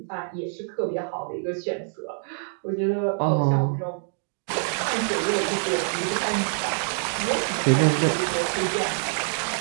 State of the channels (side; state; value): left; silent; digital silence